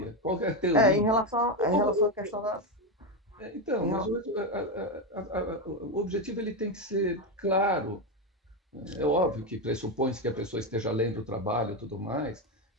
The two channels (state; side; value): normal; both; correlation 0.10